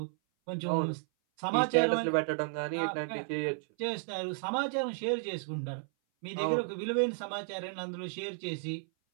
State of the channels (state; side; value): silent; left; 56 dB below the other